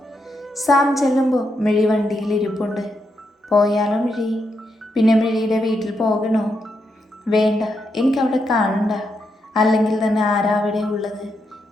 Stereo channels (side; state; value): both; normal; correlation 0.82